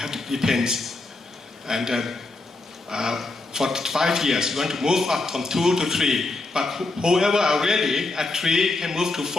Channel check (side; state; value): right; quieter; 3.3 dB